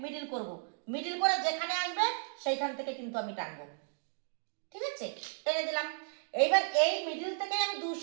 মিডিল করব, মিডিল করে যেখানে আসবে সেইখান থেকে কিন্তু আমি টানবো, ঠিক আছে, টেনে দিলাম। এইবার এই মিডিল থেকে আমি 2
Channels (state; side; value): silent; left; digital silence